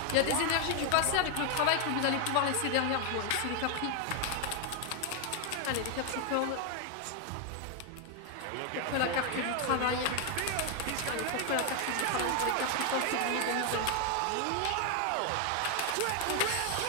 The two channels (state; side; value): different; both; correlation 0.01